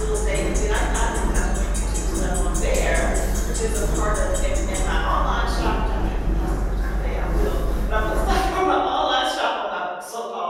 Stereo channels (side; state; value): both; identical; correlation 1.00